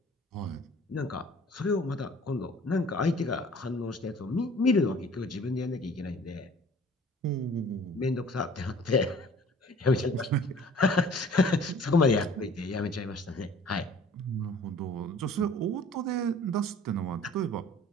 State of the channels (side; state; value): both; normal; correlation 0.50